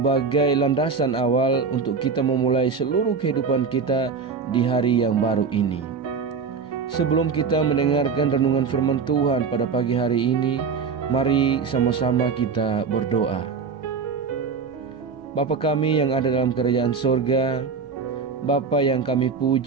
landasan awal untuk kita memulai seluruh kehidupan kita di hari yang baru ini. Sebelum kita mendengarkan renungan firman Tuhan pada pagi hari ini, mari sama-sama kita berdoa. Bapa kami yang ada dalam kerajaan sorga, Bapa yang kami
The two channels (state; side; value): quieter; left; 5.4 dB